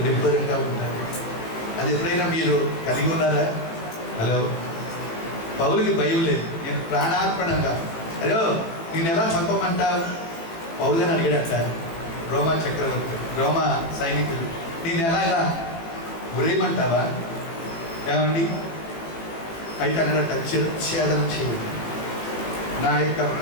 నిబ్బరంగా ఉన్నారు. అది ఎప్పుడైనా మీరు కలిగి ఉన్నారా? హలో పౌలుకి భయం లేదు. నేను ప్రాణార్పణంగా, హలో నేను ఎలా చంపమంటావు పౌలని అడిగాడట రోమా సైనికులు. నేను ఎలాగా గురేయమంటావా ఏమండి? అయితే అన్నట చిరఛేదన చేయండి, నా యొక్క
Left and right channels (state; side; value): late; right; 18 ms